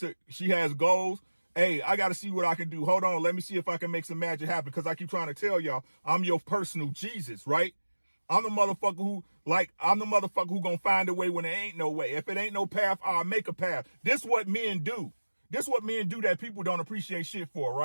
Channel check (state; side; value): inverted; both; correlation -1.00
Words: has goals. Hey, I got to see what I can do. Hold on. Let me see if I can make some magic happen. Because I keep trying to tell y'all, I'm your personal Jesus, right? I'm the motherfucker who gonna find a way when there ain't no way. If it ain't no path, I'll make a path. This what men do. This what men do that people don't appreciate shit for,